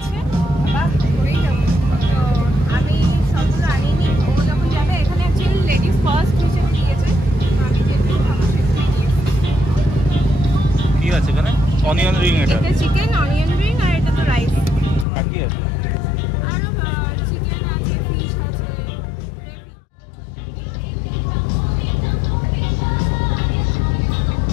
বাবা পড়েই যাবো। তো আমি সবগুলো আনিনি, ও যখন যাবে। এখানে অ্যাকচুয়ালি লেডিস ফার্স্ট হিসেবে দিয়েছে। আমি যেহেতু আমার কি আছে এখানে? অনিয়ন রিং, এটা চিকেন অনিয়ন রিং, আর এটা তো রাইস। আর কি আছে? আরো চিকেন আছে, ফিশ আছে।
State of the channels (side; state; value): right; drops out; at 15.1 s